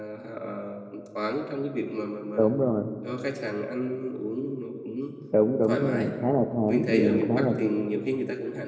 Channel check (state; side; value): identical; both; correlation 1.00